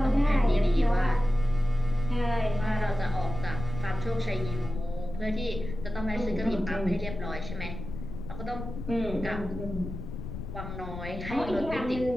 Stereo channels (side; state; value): left; noise; rumble, 8 dB below the sound